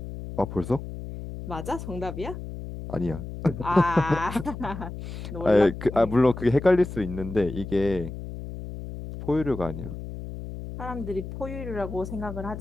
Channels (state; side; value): noise; left; hum, 9 dB below the sound